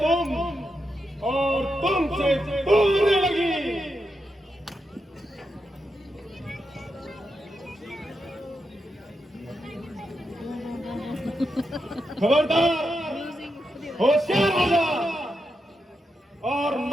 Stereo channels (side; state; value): both; normal; correlation 0.86